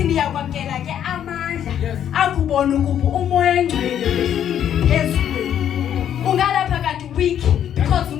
niyakwamkela ke amandla akubona ukuba umoya ongcwele phezulu. Ungalapha kanti weak because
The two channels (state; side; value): quieter; right; 9.8 dB